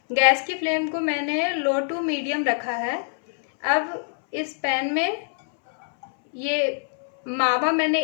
गैस की फ्लेम को मैंने लो टू मीडियम रखा है। अब इस पैन में ये मावा मैंने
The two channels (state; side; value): silent; right; 62 dB below the other